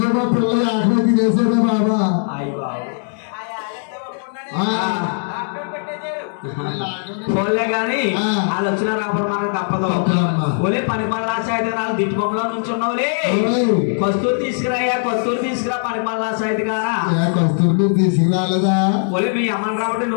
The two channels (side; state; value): right; silent; digital silence